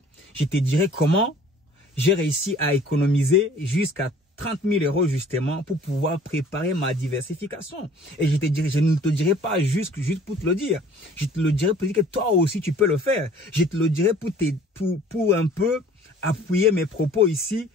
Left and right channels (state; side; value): normal; both; correlation 0.52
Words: Je te dirai comment j'ai réussi à économiser jusqu'à 30 000 € justement pour pouvoir préparer ma diversification. Et je ne te dirai pas juste pour te le dire. Je te le dirai pour dire que toi aussi tu peux le faire. Je te le dirai pour un peu appuyer mes propos ici